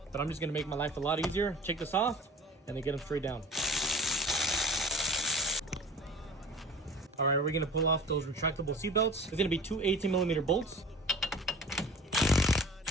but I'm just gonna make my life a lot easier. Take this off, and then get them straight down. All right, we're gonna pull off those retractable seat belts. It's gonna be 2 18mm bolts.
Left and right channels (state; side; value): normal; both; correlation 0.41